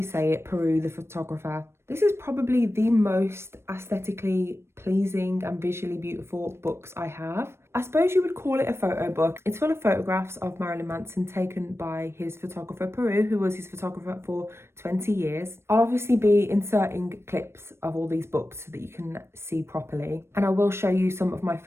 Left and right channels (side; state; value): left; late; 0.12 ms